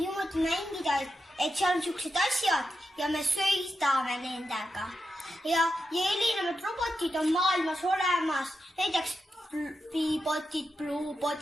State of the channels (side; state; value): both; normal; correlation 0.87